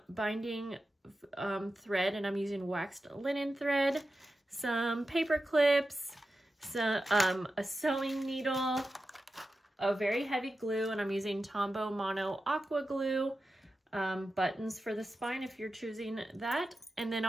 binding thread, and I'm using waxed linen thread, some paper clips, some a sewing needle, a very heavy glue, and I'm using Tombow Mono Aqua Glue, buttons for the spine if you're choosing that. And then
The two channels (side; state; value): both; normal; correlation 0.92